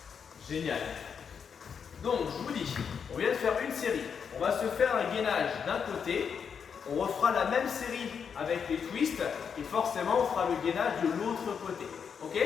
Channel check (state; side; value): quieter; right; 6.8 dB